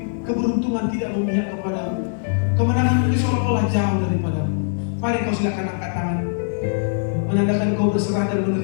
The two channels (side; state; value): right; silent; digital silence